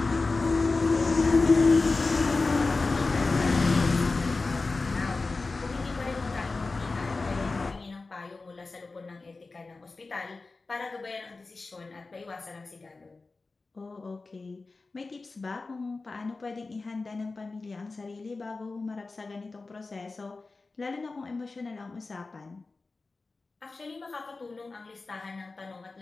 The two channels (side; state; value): right; quieter; 3.7 dB